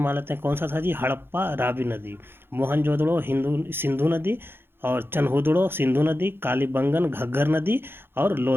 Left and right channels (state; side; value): late; left; 0.11 ms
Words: लेते हैं। कौन सा था जी? हड़प्पा रावी नदी, मोहनजोदड़ो सिंधु नदी, और चनहुदड़ो सिंधु नदी, कालीबंगन घग्घर नदी, और